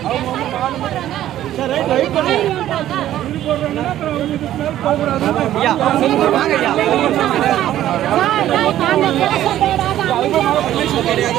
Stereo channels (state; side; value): quieter; left; 12.7 dB